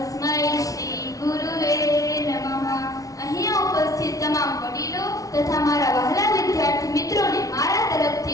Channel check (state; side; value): late; right; 0.17 ms